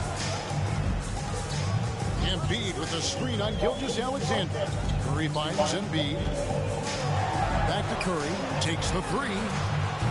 Embiid with a screen on Gilgeous-Alexander. Curry finds Embiid. Back to Curry. Takes the three.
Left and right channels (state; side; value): identical; both; correlation 1.00